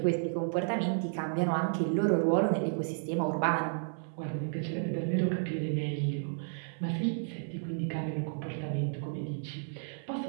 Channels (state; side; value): silent; left; 56 dB below the other